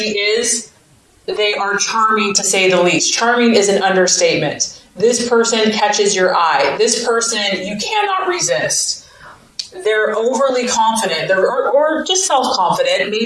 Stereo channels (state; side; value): identical; both; correlation 1.00